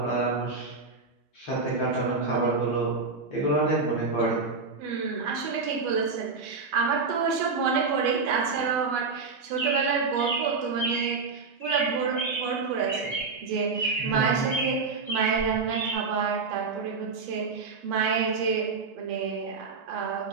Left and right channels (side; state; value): left; quieter; 4.5 dB